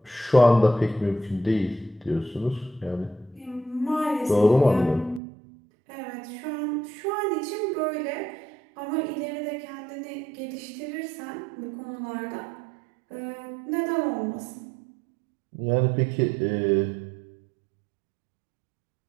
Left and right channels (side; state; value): left; drops out; at 5.2 s